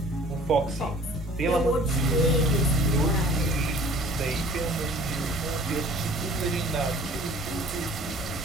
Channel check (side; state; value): both; normal; correlation 0.49